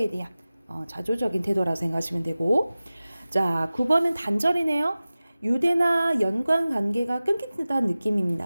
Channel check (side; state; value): both; inverted; correlation -0.96